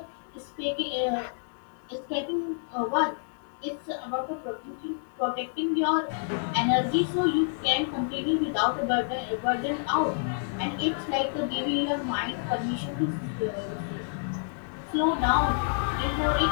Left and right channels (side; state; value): right; silent; digital silence